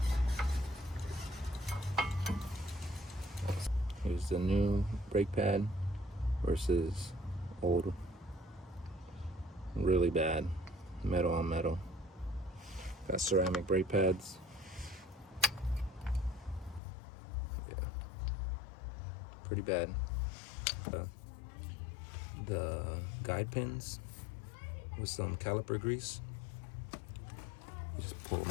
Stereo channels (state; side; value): drops out; right; at 16.8 s